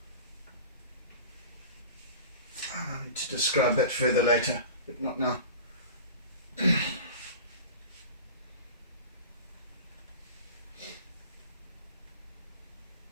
need to describe that further later, but not now.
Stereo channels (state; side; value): inverted; both; correlation -0.36